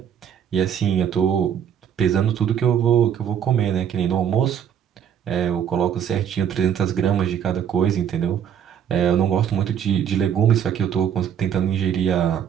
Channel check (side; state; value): left; quieter; 8.8 dB